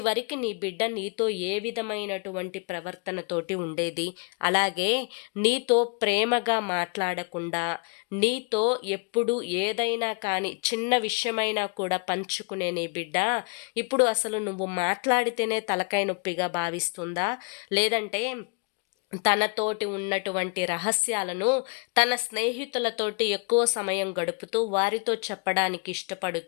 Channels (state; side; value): quieter; right; 35.2 dB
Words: నీ బిడ్డ నీతో ఏ విధమైనటువంటి ప్రవర్తనతోటి ఉండేది? అలాగే నీతో ప్రేమగా మాట్లాడకుండా, నీతో ఎప్పుడు ఏదైనా కానీ చిన్న విషయమైనా కూడా పంచుకునే నీ బిడ్డ ఇప్పుడు అసలు నువ్వు మాట్లాడితేనే తలకాయ నొప్పిగా భావిస్తుందా? లేదంటే తనతోటి ఉన్నటువంటి రహస్యాలను తన స్నేహితులతోటి ఎక్కువ సమయం గడుపుతూ వారితో చెప్పడానికి